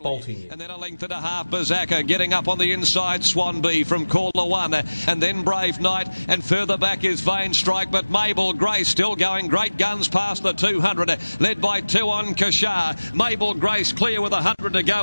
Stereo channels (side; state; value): both; inverted; correlation -1.00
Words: bolting in. And then a length and a half, Bazaka getting up on the inside, Swanby from Caller 1, and then Brave Knight, and further back is Vain Strike, but Mabel Grace still going great guns past the 200, led by 2 on Kashar. Mabel Grace clear with 100 to